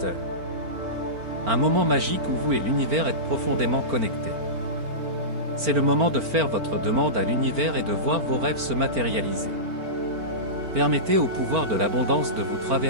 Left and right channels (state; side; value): late; left; 4.4 ms